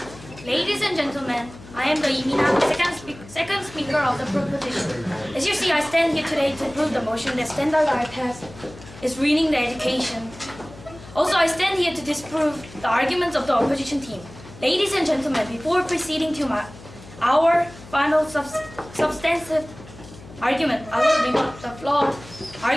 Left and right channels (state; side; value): noise; left; hum, 18 dB below the sound